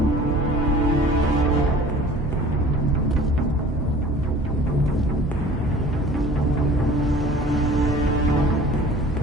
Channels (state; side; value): normal; both; correlation 0.45